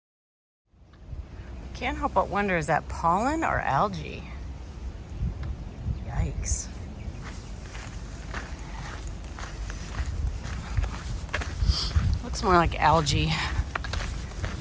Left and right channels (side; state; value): both; identical; correlation 1.00